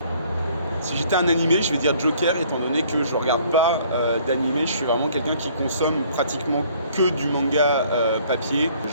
Si j'étais un animé, je vais dire Joker, étant donné que je regarde pas d'animé, je suis vraiment quelqu'un qui consomme pratiquement que du manga papier.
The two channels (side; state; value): both; inverted; correlation -0.58